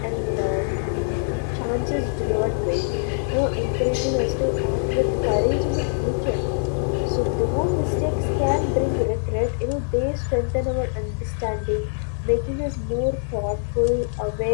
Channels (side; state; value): right; silent; digital silence